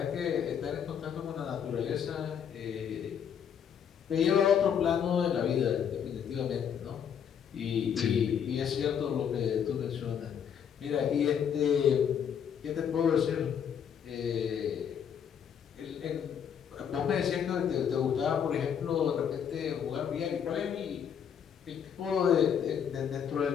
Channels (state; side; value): quieter; right; 8.1 dB